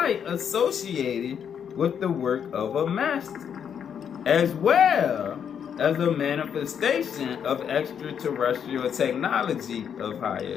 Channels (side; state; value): right; quieter; 8.0 dB